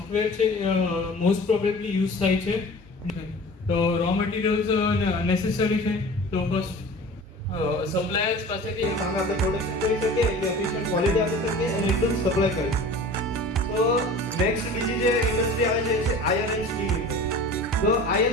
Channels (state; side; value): normal; both; correlation 0.40